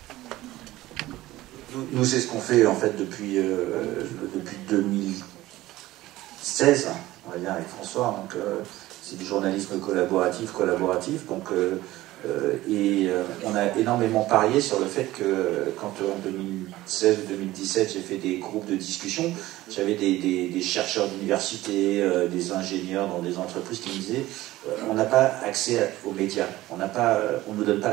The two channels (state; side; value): quieter; left; 16.8 dB